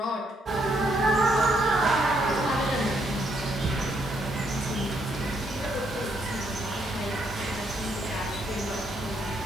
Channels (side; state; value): both; normal; correlation 0.73